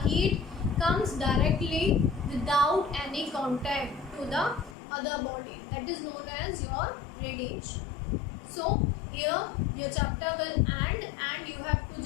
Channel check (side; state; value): right; drops out; at 4.8 s